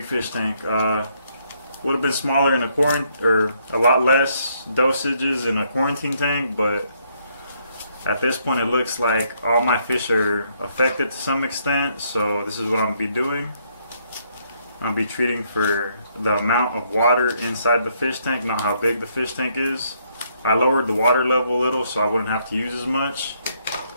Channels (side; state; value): both; inverted; correlation -0.71